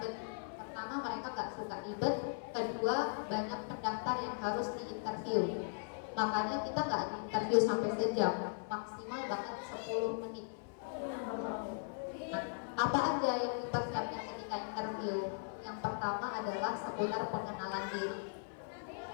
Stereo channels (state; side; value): silent; right; 52 dB below the other